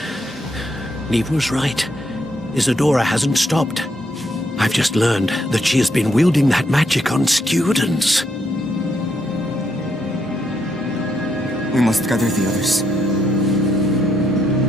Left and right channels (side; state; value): both; normal; correlation 0.76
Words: Neve was right. Isadora hasn't stopped. I've just learned that she has been wielding that magic on students. We must gather the others.